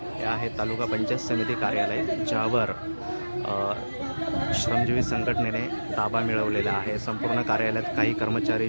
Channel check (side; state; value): both; inverted; correlation -1.00